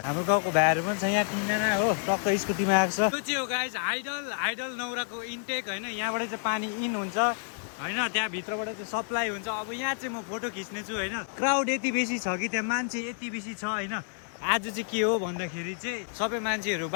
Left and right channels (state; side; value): silent; right; digital silence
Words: हाम्रो गाउँको भाइहरु पनि छ यहाँ किनजना हो, टक्क स्कुटीमा आएको छ। त्यो चाहिँ हो गाइज आइडल नौराको इन्टेक हैन। यहाँबाट चाहिँ पानी इन हुन्छ हैन, त्यहाँ भित्रबाट चाहिँ सप्लाई हुन्छ। अब यहाँ चाहिँ म फोटो खिच्ने छु हैन। क्राउड यति बेसी छ कि त्यहाँ मान्छे यति बेसी छ हैन। आज चाहिँ के हो भन्दाखेरि चाहिँ सबै मान्छेहरू